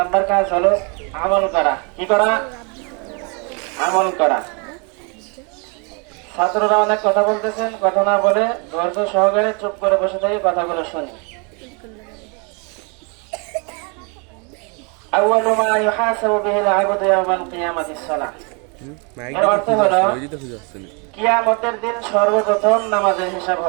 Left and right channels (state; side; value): quieter; left; 33.9 dB